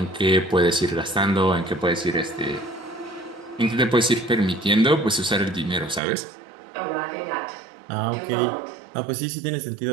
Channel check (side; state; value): left; drops out; at 6.0 s